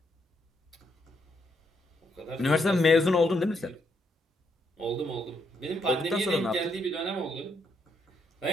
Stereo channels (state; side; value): normal; both; correlation 0.76